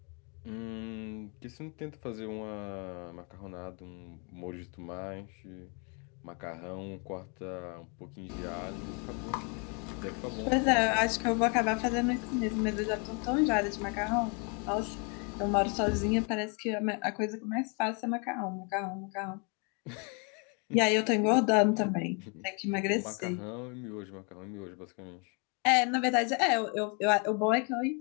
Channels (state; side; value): quieter; right; 35.4 dB